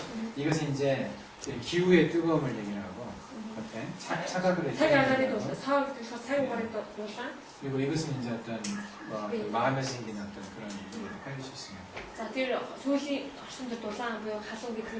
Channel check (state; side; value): identical; both; correlation 1.00